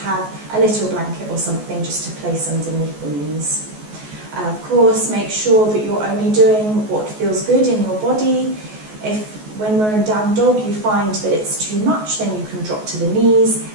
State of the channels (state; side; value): late; left; 14 ms